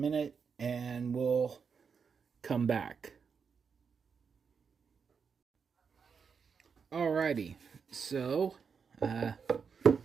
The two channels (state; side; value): quieter; left; 6.0 dB